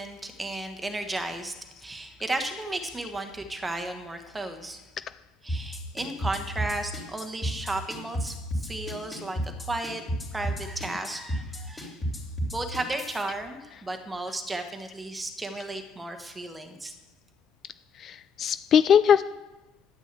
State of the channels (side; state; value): right; quieter; 3.0 dB